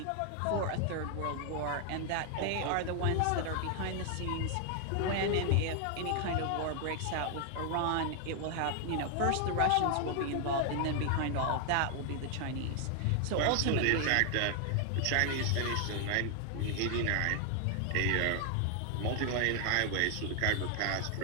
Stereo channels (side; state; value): both; different; correlation 0.00